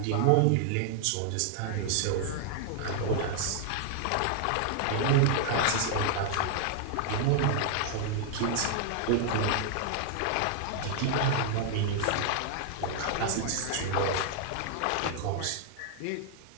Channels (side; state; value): both; different; correlation 0.00